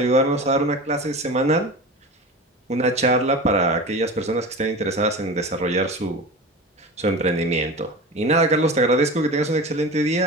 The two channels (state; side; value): normal; both; correlation 0.31